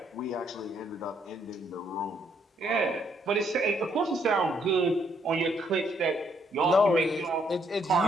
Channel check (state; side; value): normal; both; correlation 0.71